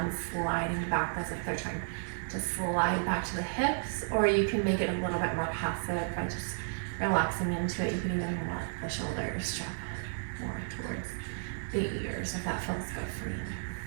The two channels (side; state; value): left; silent; digital silence